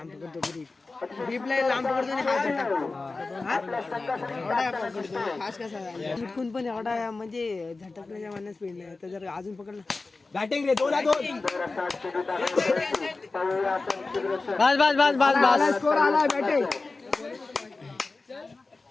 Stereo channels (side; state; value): right; quieter; 3.7 dB